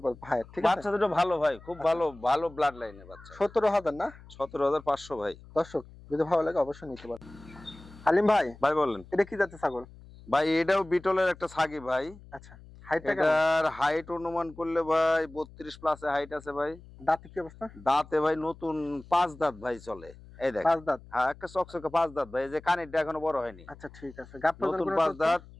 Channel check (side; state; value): left; noise; hum, 20 dB below the sound